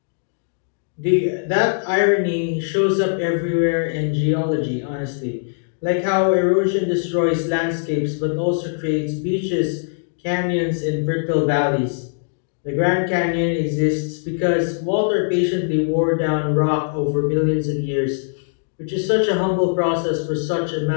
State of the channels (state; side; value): silent; right; digital silence